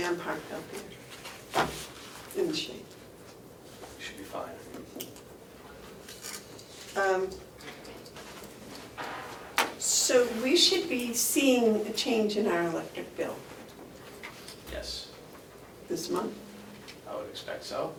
I'm parked out there in the shade. Should be fine. So we should be seeing a change in our electric bill Yes, this month I would expect so.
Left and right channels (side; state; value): both; identical; correlation 1.00